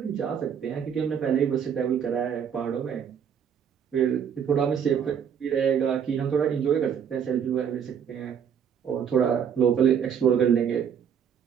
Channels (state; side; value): quieter; left; 8.0 dB